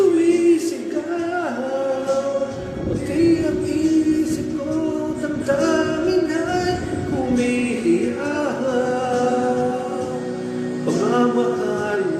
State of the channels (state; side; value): identical; both; correlation 1.00